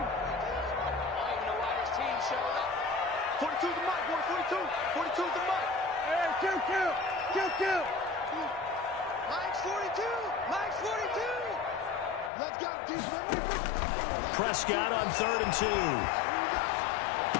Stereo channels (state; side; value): drops out; right; at 12.3 s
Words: Prescott on 3rd and 2.